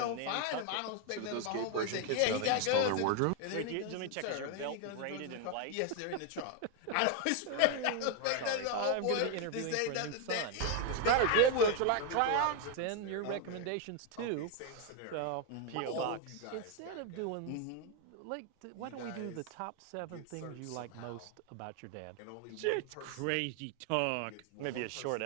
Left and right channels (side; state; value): both; different; correlation 0.01